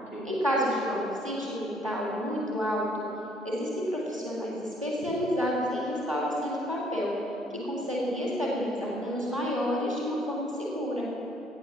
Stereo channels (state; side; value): normal; both; correlation 0.63